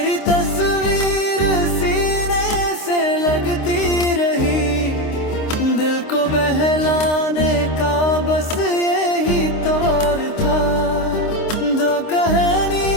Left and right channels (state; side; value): late; right; 26 ms